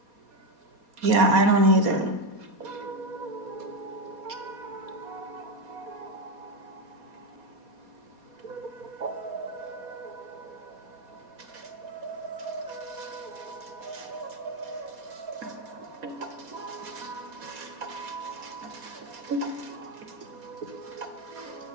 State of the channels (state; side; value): late; left; 4.2 ms